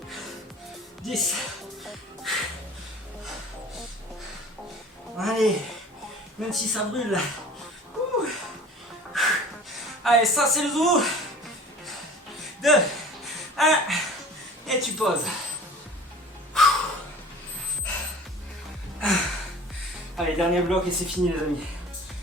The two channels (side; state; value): both; normal; correlation 0.44